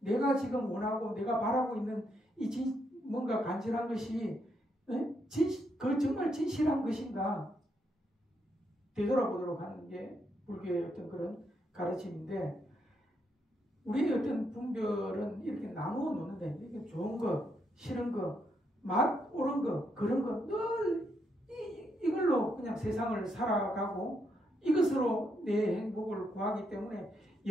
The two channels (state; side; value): normal; both; correlation 0.78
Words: 내가 지금 원하고 내가 바라고 있는 뭔가 간절한 것이 그 정말 진실한 것인가 되돌아보도록 하는 게 불교의 어떤 그런 가르침인데 우리의 어떤 분별은 이렇게 나누어 놓는다. 이게 좋은 거, 싫은 거, 맛 옳은 거, 그런 거 늘 이걸로 그냥 세상을 살아가고 이것으로 내 행복을 구하기 때문에